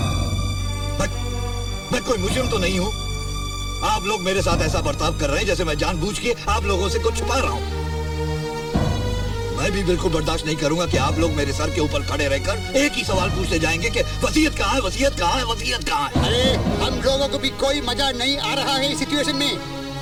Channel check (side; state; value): both; identical; correlation 1.00